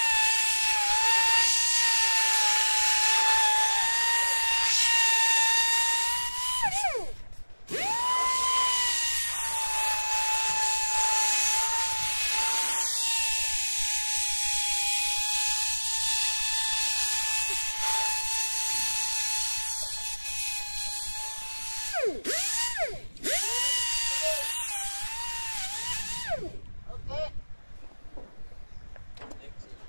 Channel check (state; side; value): inverted; both; correlation -1.00